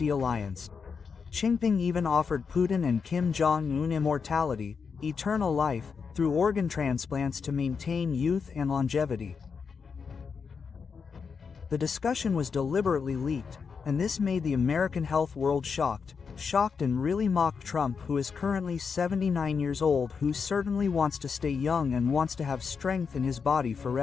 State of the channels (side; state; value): right; quieter; 5.8 dB